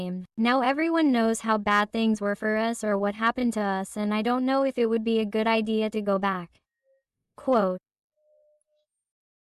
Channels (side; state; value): both; identical; correlation 1.00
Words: Now everyone knows how bad things were for us or what happened to us, and I don't know if it would be a good idea to go back. Quote.